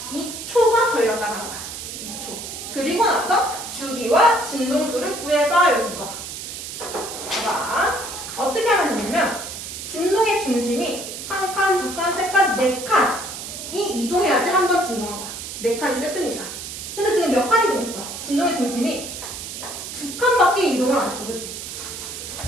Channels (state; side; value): noise; right; hiss, 9 dB below the sound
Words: 그리고 나서 주기와 진동수를 구해봐. 여기가. 봐. 어떻게 하면 되냐면 진동의 중심이 한 칸, 두 칸, 세 칸, 네 칸이 이동해야지 한 번 진동한 거야. 네 칸이 세트니까. 근데 지금 몇 칸 이동했어? 진동의 중심이 두 칸밖에 이동을 안 했어. 그치?